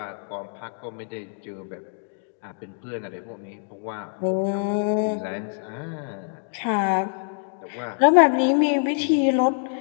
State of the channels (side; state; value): right; silent; digital silence